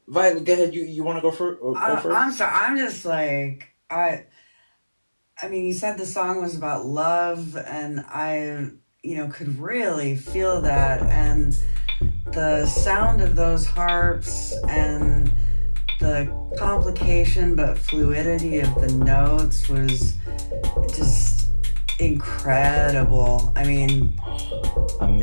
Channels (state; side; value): inverted; both; correlation -1.00